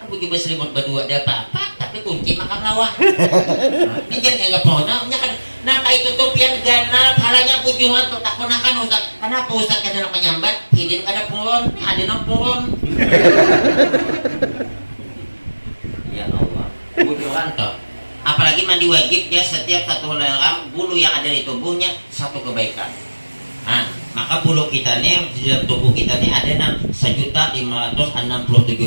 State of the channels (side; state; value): both; inverted; correlation -1.00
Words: aku juga selimut berdua ada apa tapi kunci makan lawan ini jangan anggap pohonnya kan nah kayak tutup yang ganal palanya pujuan tuh tak ponakan Ustaz. Kenapa Ustaz kada nak menyambat hidin kada puron ada nang puron ya Allah pujuan tuh Apalagi mandi wajib ya, setiap satu helai bulu yang ada di tubuhnya satu kebaikan. Nah, maka bulu kita nih di dalam tubuh kita nih ada